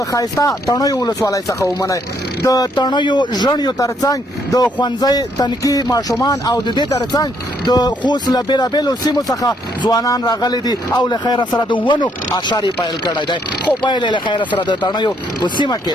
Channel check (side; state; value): both; normal; correlation 0.71